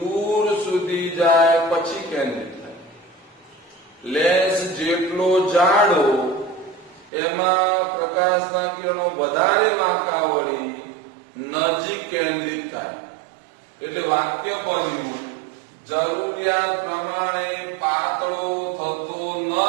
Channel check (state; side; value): drops out; left; at 7.1 s